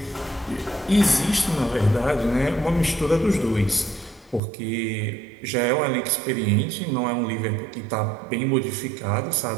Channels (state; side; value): drops out; left; at 4.4 s